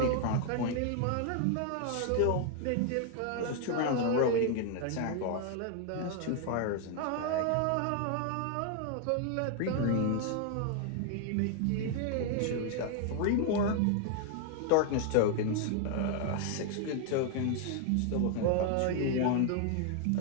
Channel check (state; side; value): different; both; correlation 0.00